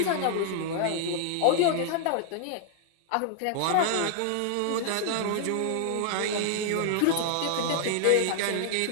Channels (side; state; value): both; different; correlation -0.01